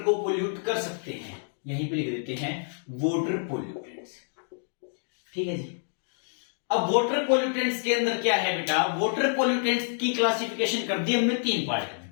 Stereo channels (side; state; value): right; silent; digital silence